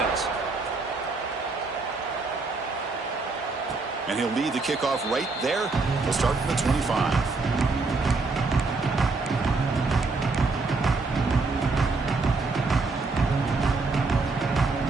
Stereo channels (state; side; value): quieter; left; 3.9 dB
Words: And he'll lead the kickoff right there. He'll start from the 25.